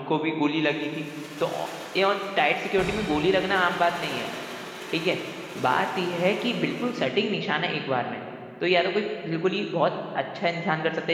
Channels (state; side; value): identical; both; correlation 1.00